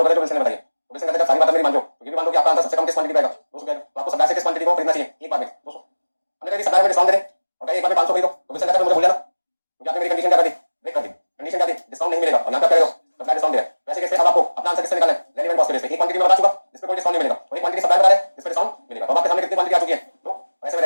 करें जो विल्सन ने बताई, तो विल्सन कहता है जब सारी बातें मेरी मान लो, तो ये भी मान लो कि आपका आंसर सबसे कम किस क्वांटिटी पे आएगा? 200 पे आएगा, तो आपको सप्लायर से किस क्वांटिटी को खरीदना चाहिए? एक बार में 200। हमने कहा सप्लायर में डिस्काउंट दे दे और कहा एक बार में 500 खरीदो, तो विल्सन कहता है मुझे भूल जाना, क्योंकि आपने मेरी कंडीशन क्या कर दी? ब्रेक कर दी। कंडीशन क्या थी? डिस्काउंट नहीं मिलेगा, और यहां पे क्या कह रहे हो? सप्लायर डिस्काउंट दे रहा है। वैसे कैसे अब आपको अपना आंसर किससे निकालना है? कैरी एंड कॉस्ट के बेस पे एक क्वांटिटी में बता चुका जिस पे कोई डिस्काउंट नहीं मिलेगा और एक क्वांटिटी सप्लाई बता रहा है जिस पे डिस्काउंट मिलेगा। तो आपके सामने कितनी क्वांटिटी आ चुकी है तो ऐसे में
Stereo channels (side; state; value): both; inverted; correlation -1.00